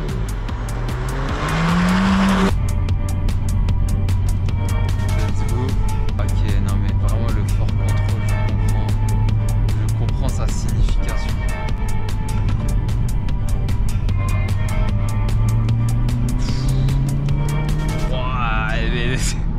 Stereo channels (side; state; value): both; identical; correlation 1.00